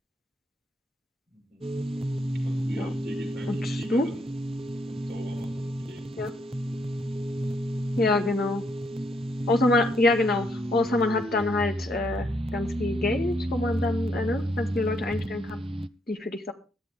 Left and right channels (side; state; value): both; normal; correlation 0.74